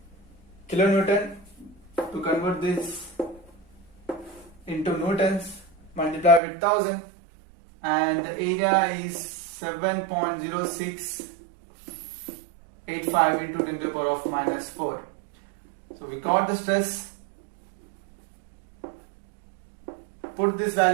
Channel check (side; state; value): left; drops out; at 6.4 s